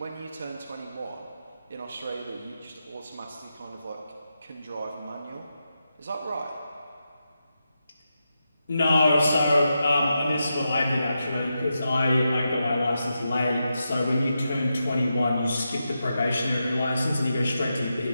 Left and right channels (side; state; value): both; inverted; correlation -0.87